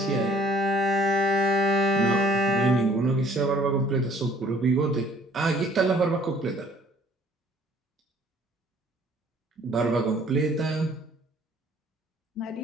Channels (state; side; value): normal; both; correlation 0.57